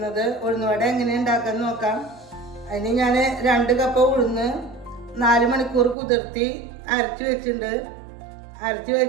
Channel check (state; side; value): drops out; left; at 6.0 s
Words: ഉഴുന്നുവട എങ്ങനെ ഉണ്ടാക്കാൻ നോക്കാം. അതിന് ഞാൻ 2 കപ്പ് ഉഴുന്ന് 4 മണിക്കൂർ കുതിർത്തി അരച്ച് വെച്ചിട്ടുണ്ട്. അരച്ച്